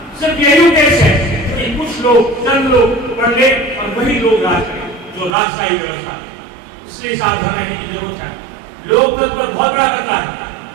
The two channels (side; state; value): left; drops out; at 5.4 s